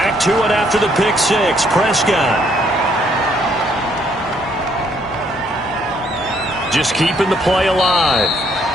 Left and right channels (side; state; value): both; normal; correlation 0.68